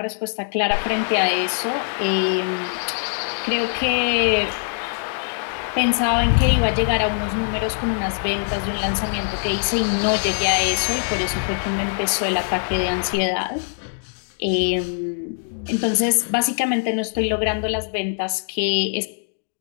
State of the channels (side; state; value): right; silent; digital silence